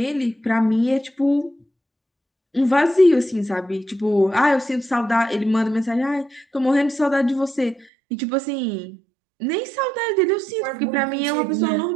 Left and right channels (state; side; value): drops out; left; at 7.9 s